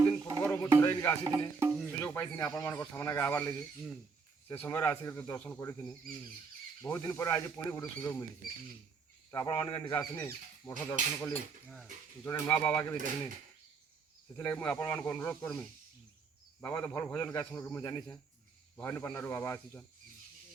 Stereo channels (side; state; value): left; quieter; 5.0 dB